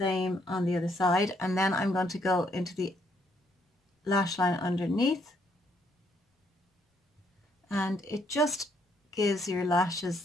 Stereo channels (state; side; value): normal; both; correlation 0.70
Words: on the other side, and then I'm going to go into the lash line underneath, and it just gives your lashes